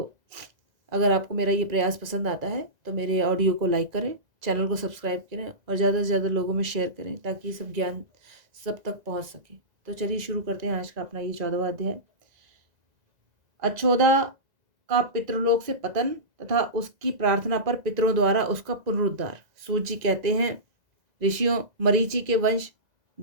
अगर आपको मेरा ये प्रयास पसंद आता है तो मेरे ऑडियो को लाइक करें, चैनल को सब्सक्राइब करें और ज़्यादा से ज़्यादा लोगों में शेयर करें ताकि सब ज्ञान सब तक पहुंच सके। तो चलिए शुरू करते हैं आज का अपना ये 14वां अध्याय। अचोदा का पितृलोक से पतन तथा उसकी प्रार्थना पर पितरों द्वारा उसका पुनरुद्धार। सूत जी कहते हैं, ऋषियों मरीचि के वंश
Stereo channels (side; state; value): left; late; 2.0 ms